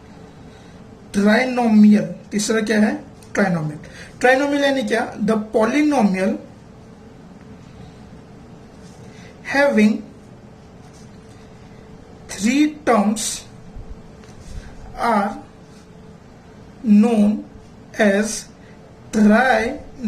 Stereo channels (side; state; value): both; identical; correlation 1.00